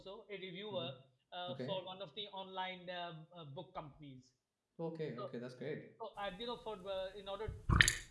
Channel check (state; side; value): identical; both; correlation 1.00